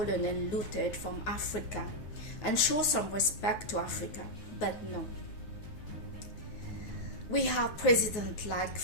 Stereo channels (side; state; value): right; late; 9.6 ms